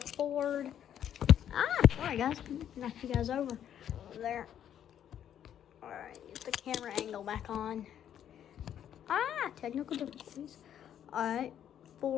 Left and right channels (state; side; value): quieter; right; 10.0 dB